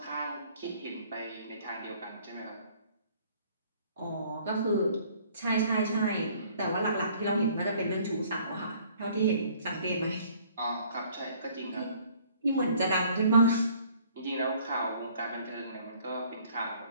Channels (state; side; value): inverted; both; correlation -0.58